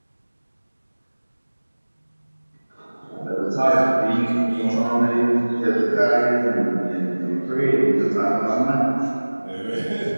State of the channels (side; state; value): both; inverted; correlation -1.00